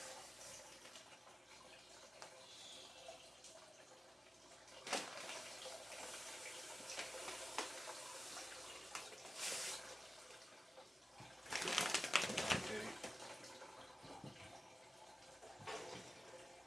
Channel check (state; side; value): normal; both; correlation 0.94